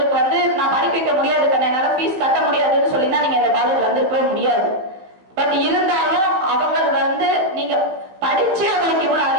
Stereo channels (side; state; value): left; late; 16 ms